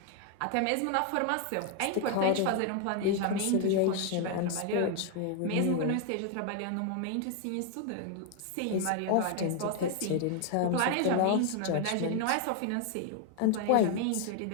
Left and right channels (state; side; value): different; both; correlation 0.00